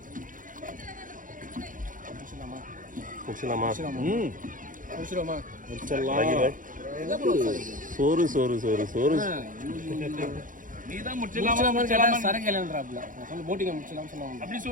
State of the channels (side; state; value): left; late; 0.39 ms